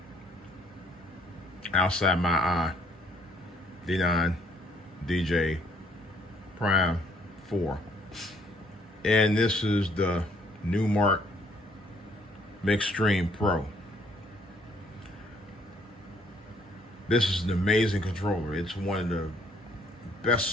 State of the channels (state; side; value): normal; both; correlation 0.65